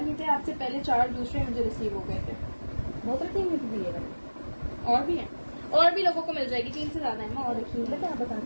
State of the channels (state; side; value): inverted; both; correlation -1.00